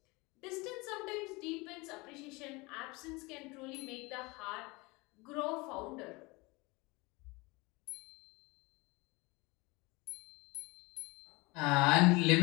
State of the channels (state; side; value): quieter; right; 24.8 dB